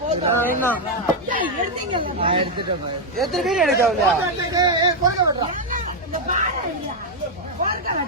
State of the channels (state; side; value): normal; both; correlation 0.00